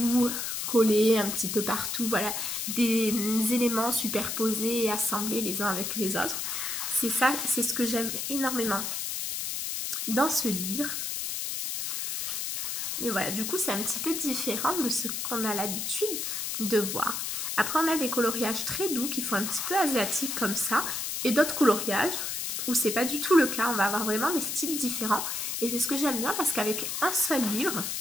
collés un petit peu partout, voilà, des éléments superposés et assemblés les uns avec les autres. C'est ça, c'est ce que j'aime énormément dans ce livre. Et voilà, du coup, c'est un petit peu différent de ce qu'on a l'habitude de voir. Après, on a des coloriages très doux qui font un petit peu asiatique comme ça. Et d'autres coloriages où c'est pas du tout le cas. On va avoir vraiment des styles différents. Et c'est ce que j'aime bien parce qu'avec un seul livre,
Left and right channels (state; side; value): noise; left; hiss, 2 dB below the sound